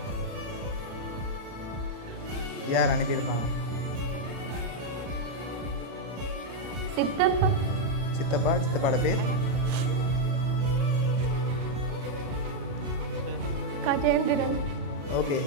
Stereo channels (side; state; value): left; late; 35 ms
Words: யார் அனுப்பியிருப்பாங்க? சித்தப்பா. சித்தப்பாட பேர்? கஜேந்திரன். ஓகே,